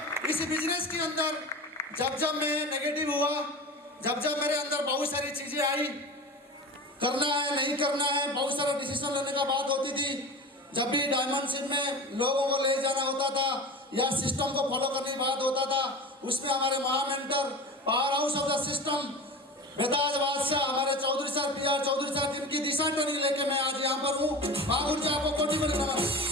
इस बिजनेस के अंदर जब मैं नेगेटिव हुआ, जब मेरे अंदर बहुत सारी चीजें आई, करना है नहीं करना है, बहुत सारा डिसीजन लेने का बात होती थी। जब भी डायमंडशिप में लोगों को ले जाना होता था या सिस्टम को फॉलो करने की बात होता था, उसमें हमारे महामेंटर power house of the system बेताज बादशाह हमारे Chaudhary sir PR Chaudhary sir, जिनकी दिशा ट्रेनिंग लेके मैं आज यहाँ पर हूँ। महागुरु जी आपको कोटि कोटि नमन।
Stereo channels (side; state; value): both; normal; correlation 0.32